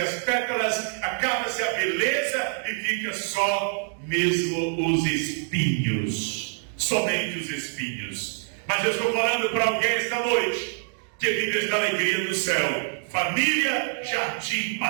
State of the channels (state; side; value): silent; left; 61 dB below the other